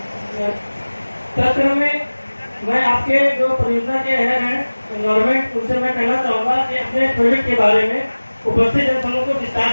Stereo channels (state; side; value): inverted; both; correlation -1.00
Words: तत्क्रम में मैं आपके जो परियोजना के हेड हैं गवर्नमेंट, उनसे मैं कहना चाहूँगा कि अपने प्रोजेक्ट के बारे में उपस्थित जनसमूह को विस्तार